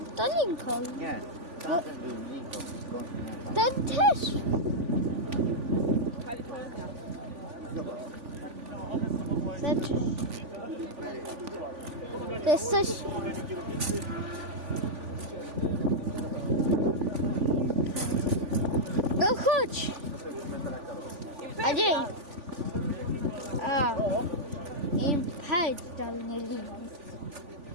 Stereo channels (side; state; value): left; late; 3.5 ms